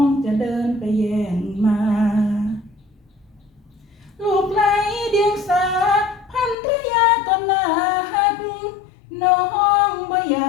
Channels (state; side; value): drops out; right; at 6.6 s